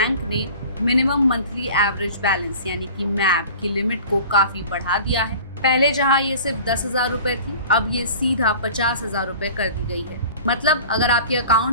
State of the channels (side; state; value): both; inverted; correlation -0.42